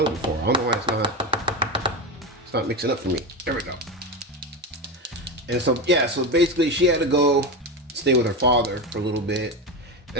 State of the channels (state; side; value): normal; both; correlation 0.17